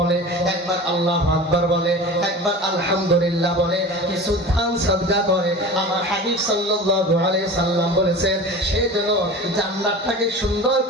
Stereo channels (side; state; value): both; normal; correlation 0.35